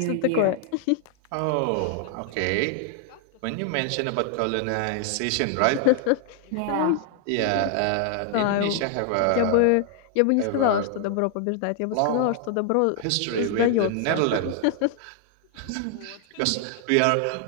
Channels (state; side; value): different; both; correlation 0.00